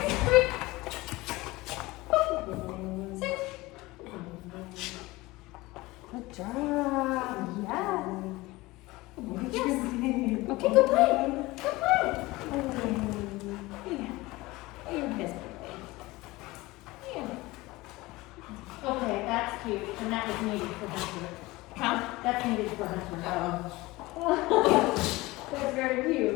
Break. Sit. Good job. Yeah. Yes. Okay, go play. Go play. You're pissed. Okay, that's cute, and that was needed for Hunter. Huh? That's needed for Hunter. That's very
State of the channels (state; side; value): quieter; right; 20.5 dB